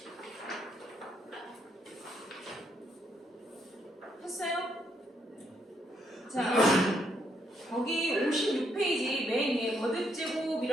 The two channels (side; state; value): both; normal; correlation 0.74